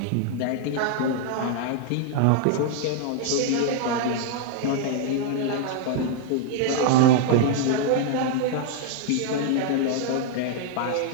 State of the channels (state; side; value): different; both; correlation 0.00